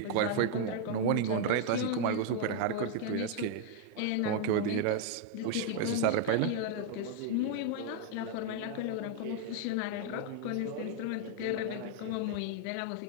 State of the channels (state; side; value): different; both; correlation 0.00